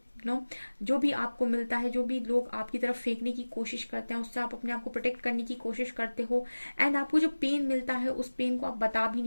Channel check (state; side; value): inverted; both; correlation -1.00